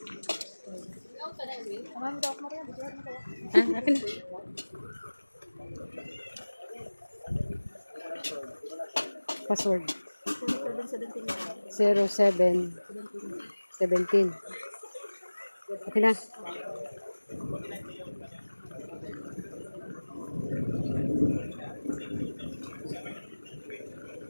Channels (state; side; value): inverted; both; correlation -1.00